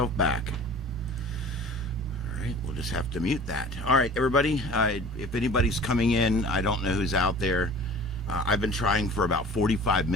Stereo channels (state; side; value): normal; both; correlation 0.44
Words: back? All right, we'll just have to mute that. All right, everybody. If anybody's coming in, I don't know who's out there. I've been trying for about 45